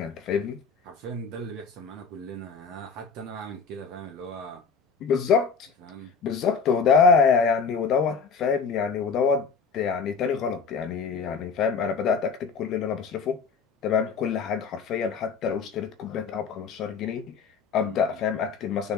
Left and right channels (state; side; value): quieter; right; 5.4 dB